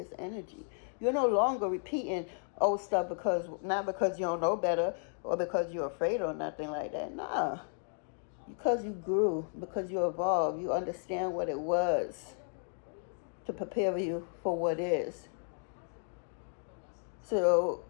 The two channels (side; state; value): right; silent; 55 dB below the other